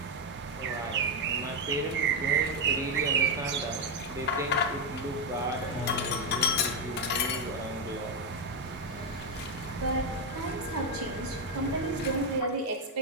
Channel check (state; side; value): normal; both; correlation 0.04